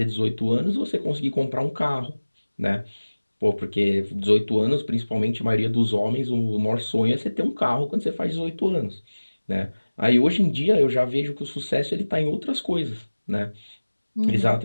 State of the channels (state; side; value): inverted; both; correlation -1.00